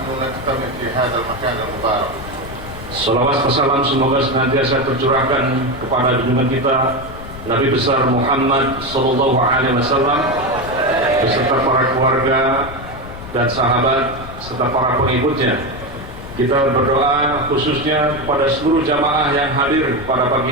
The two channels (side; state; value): left; noise; rumble, 13 dB below the sound